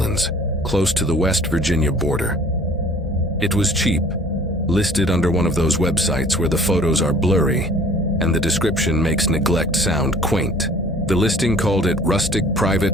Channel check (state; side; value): normal; both; correlation 0.51